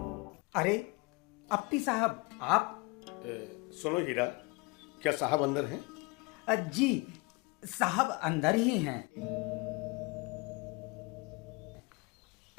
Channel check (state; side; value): quieter; right; 27.6 dB